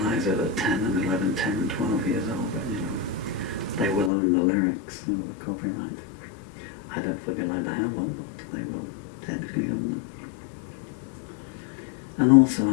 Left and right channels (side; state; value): right; drops out; at 4.1 s